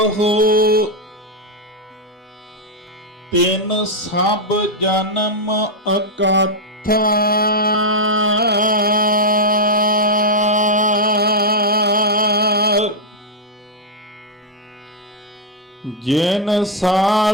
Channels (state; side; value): normal; both; correlation -0.01